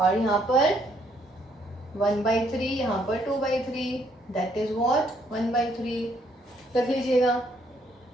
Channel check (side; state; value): both; normal; correlation 0.69